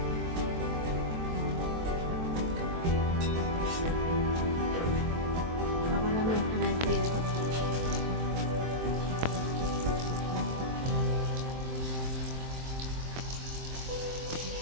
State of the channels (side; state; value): left; late; 23 ms